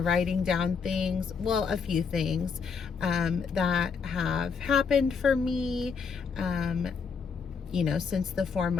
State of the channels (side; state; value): right; quieter; 5.7 dB